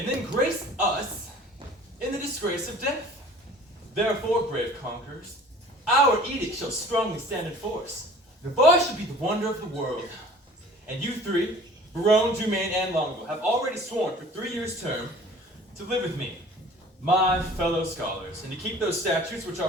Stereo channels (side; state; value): both; normal; correlation 0.47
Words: then grace us in the disgrace of death. Therefore, brave conquerors, our edict shall strongly stand in force. The bar should be the wonder of the world. And you three, Barone, Dumaine, and Longo, have already sworn for 3 years' term to live with me, my fellow scholars, and to keep those statutes which